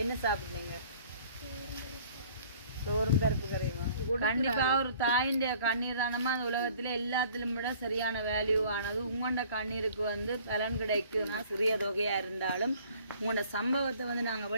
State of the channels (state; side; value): inverted; both; correlation -0.53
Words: என்ன சாப்பிடுங்க? சோறும் பருப்பு கரையுமா? கண்டிப்பாக ஒரு தாயின் கண்ணீர் தானமா அந்த உலகத்தில் எல்லாத்திலும் விட சரியான வேல்யூ ஆனது. உங்களோட கண்ணீருக்கு வந்து பலன் கிடைக்கும்னா சிறிய தொகையாக இருந்தாலும் உங்களோட சம்பவத்தை வந்து நாங்கள்